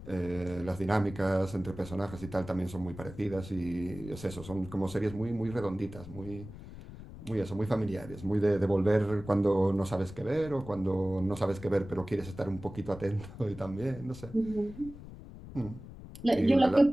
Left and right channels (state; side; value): noise; left; rumble, 14 dB below the sound